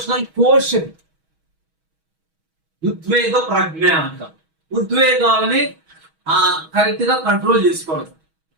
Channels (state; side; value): late; left; 6.2 ms